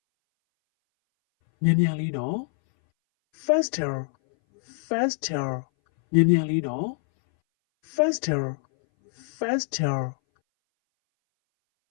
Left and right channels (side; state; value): right; silent; 60 dB below the other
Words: မြန်မြန်လေးနော် Faster. Faster. မြန်မြန်လေးနော် Faster. Faster.